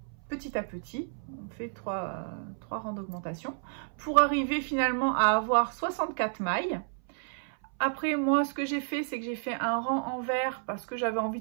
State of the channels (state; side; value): silent; left; 57 dB below the other